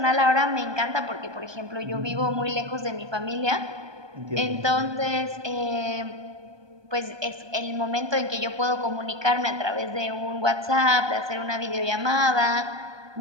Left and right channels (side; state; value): left; late; 1.2 ms